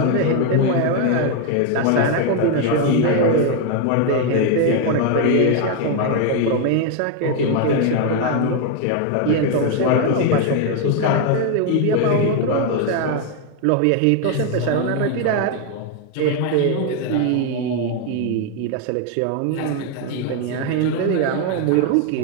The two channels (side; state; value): both; different; correlation 0.01